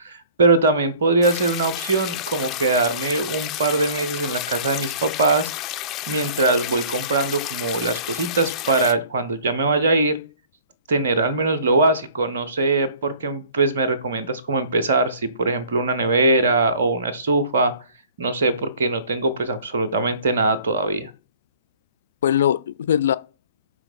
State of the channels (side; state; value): both; inverted; correlation -0.50